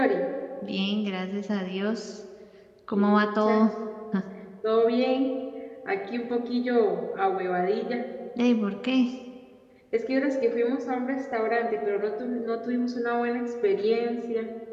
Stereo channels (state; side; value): identical; both; correlation 1.00